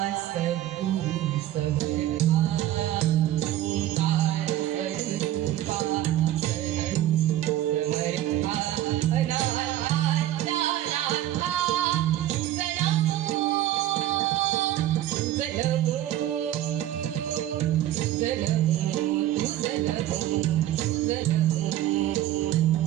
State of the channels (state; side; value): quieter; left; 13.4 dB